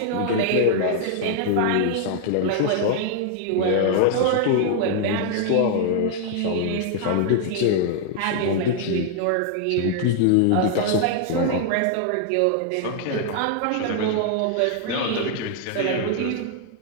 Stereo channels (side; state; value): both; different; correlation 0.00